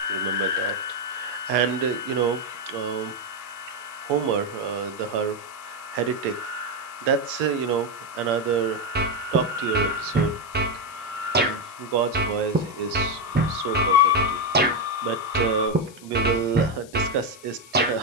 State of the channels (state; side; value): noise; left; hiss, 21 dB below the sound